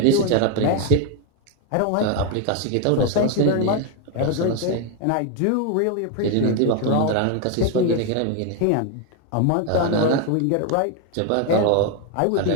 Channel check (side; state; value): both; different; correlation 0.01